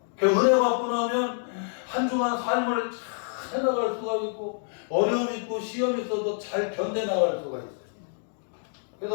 그 은혜 받고 나면 한 주간 삶을 잘 해나갈 수가 있고 어려움 있고 시험 있어도 잘 견뎌나갈 수가 있어요.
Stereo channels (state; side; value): silent; right; 60 dB below the other